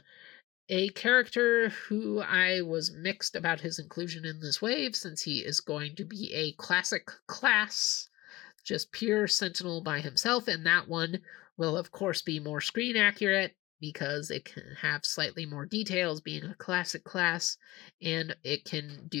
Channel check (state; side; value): quieter; right; 18.8 dB